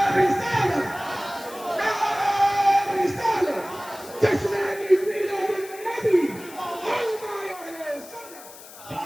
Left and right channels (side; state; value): left; noise; hiss, 17 dB below the sound